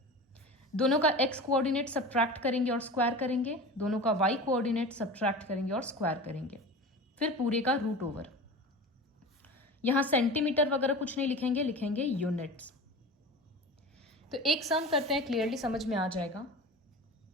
दोनों का x कोऑर्डिनेट सब्ट्रैक्ट करेंगे और स्क्वायर करेंगे, दोनों का y कोऑर्डिनेट सब्ट्रैक्ट करेंगे और स्क्वायर करेंगे, फिर पूरे का रूट ओवर. यहां सेंटीमीटर वगैरह कुछ नहीं लिखेंगे, लिखेंगे यूनिट्स. तो एक सम करते हैं, क्लियरली समझ में आ जाएगा.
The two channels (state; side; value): normal; both; correlation 0.33